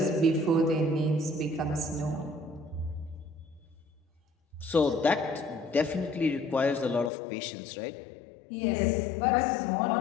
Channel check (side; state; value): right; drops out; at 7.1 s